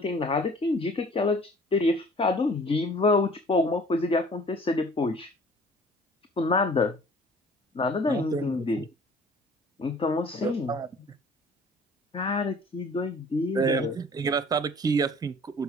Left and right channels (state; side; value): normal; both; correlation 0.51